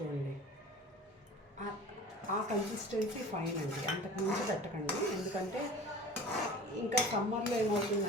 ఆ కన్సిస్టెన్సీ ఫైన్ అండి, అంతకుమించి పెట్టకండి. ఎందుకంటే ఇంకా సమ్మర్లో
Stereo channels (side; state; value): both; normal; correlation 0.41